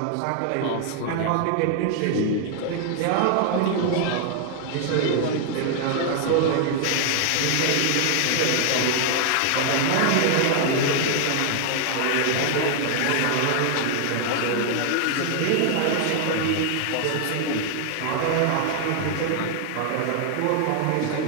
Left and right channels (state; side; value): different; both; correlation 0.00